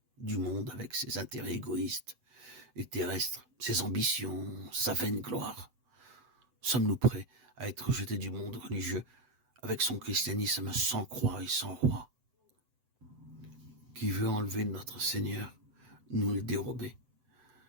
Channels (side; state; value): left; late; 7.9 ms